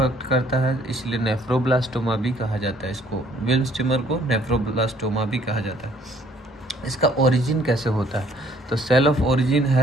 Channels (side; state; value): both; normal; correlation 0.61